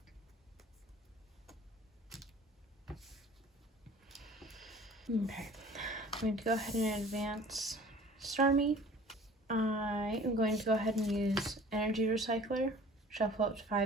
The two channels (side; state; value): both; normal; correlation 0.47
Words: Okay. I'm going to go ahead and advance Starmie. I am going to go ahead and use Energy Recycler. Shuffle up to